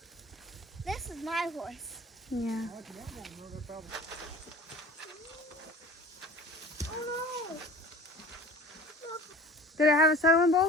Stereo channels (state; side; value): normal; both; correlation 0.41